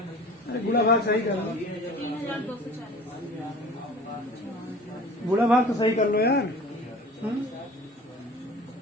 अरे बुरा भाग सही कर लो, 3240। बुरा भाग तो सही कर लो यार।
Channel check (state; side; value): normal; both; correlation 0.43